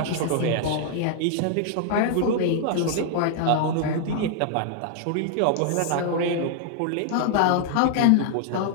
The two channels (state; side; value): different; both; correlation -0.01